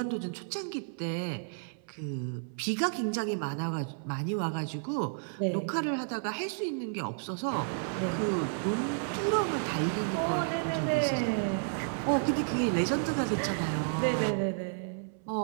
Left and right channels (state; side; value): silent; left; 57 dB below the other